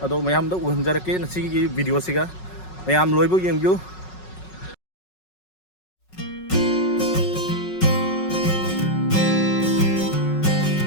Ado mayam da uhanjarake nasi gi video siga. Mayam loibo yengyu.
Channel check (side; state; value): right; late; 5.4 ms